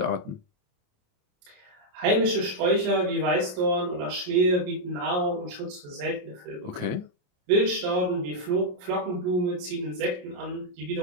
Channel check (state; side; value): late; left; 28 ms